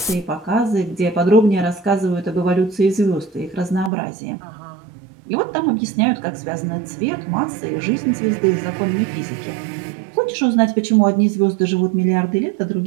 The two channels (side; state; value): left; drops out; at 3.9 s